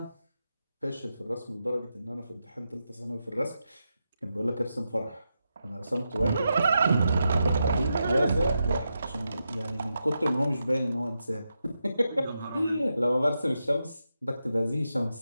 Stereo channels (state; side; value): inverted; both; correlation -0.87